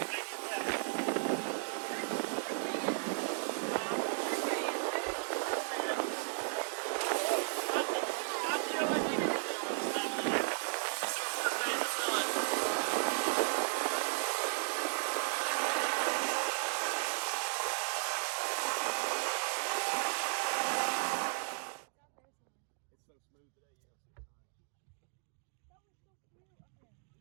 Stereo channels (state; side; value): silent; left; digital silence